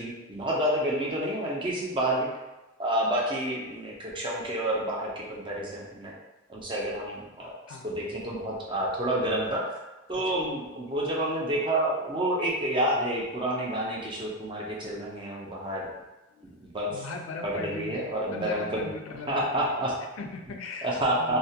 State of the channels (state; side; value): normal; both; correlation 0.09